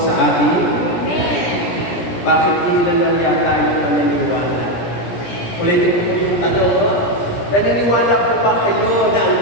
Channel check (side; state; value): right; late; 17 ms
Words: atin? Bakit hindi lang yata yung paniniwala? Ulitin ko yung tanong, no? Naniniwala po ba kayo na ang